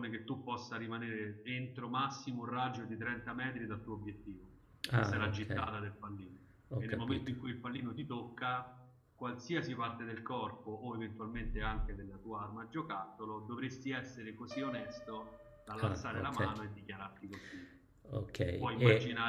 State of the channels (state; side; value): identical; both; correlation 1.00